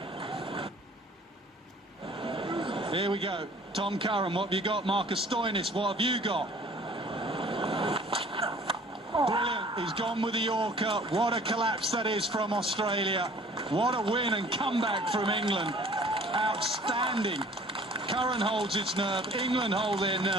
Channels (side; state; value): both; normal; correlation 0.51